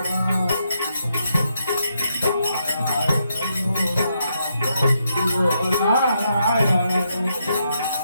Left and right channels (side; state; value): both; inverted; correlation -0.80